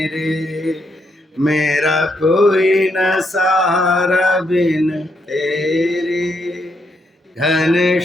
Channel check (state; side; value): normal; both; correlation 0.78